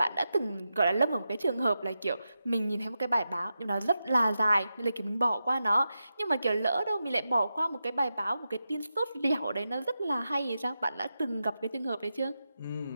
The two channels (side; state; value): both; inverted; correlation -0.90